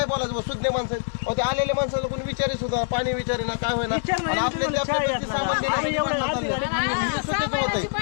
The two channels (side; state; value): right; silent; digital silence